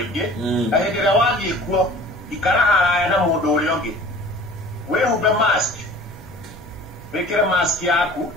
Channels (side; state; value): both; normal; correlation 0.45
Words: Na hedera wagi ikuo, ikara haraya na mundu uliongi. We hube mask. Wekera mask yaku